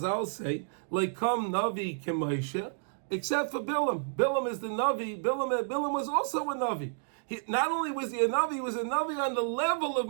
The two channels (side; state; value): left; silent; digital silence